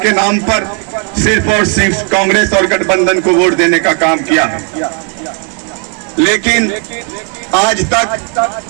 नाम पर सिर्फ और सिर्फ कांग्रेस और गठबंधन को वोट देने का काम किया है। लेकिन आज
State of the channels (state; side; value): quieter; left; 34.7 dB